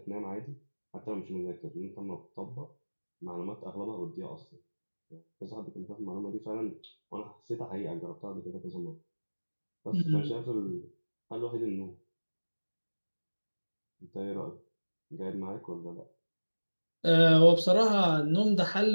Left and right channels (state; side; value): inverted; both; correlation -1.00